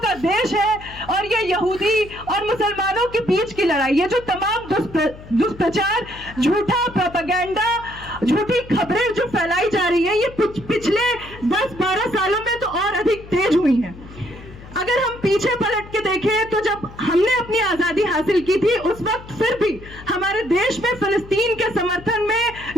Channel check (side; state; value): left; noise; hum, 17 dB below the sound